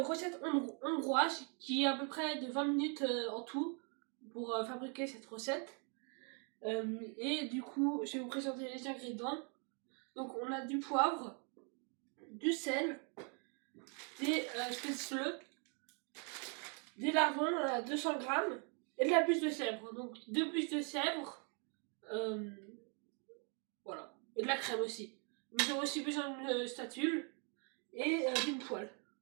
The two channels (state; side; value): quieter; left; 37.9 dB